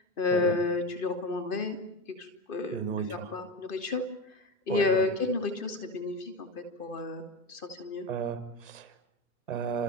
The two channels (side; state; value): right; late; 2.5 ms